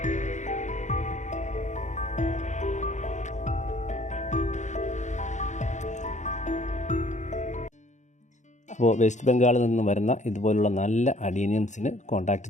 അപ്പോൾ വെസ്റ്റ് ബംഗാളിൽ നിന്ന് വരുന്ന ഇതുപോലുള്ള നല്ല അഡീനിയംസിന് കോൺടാക്റ്റ്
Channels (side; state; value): right; late; 0.35 ms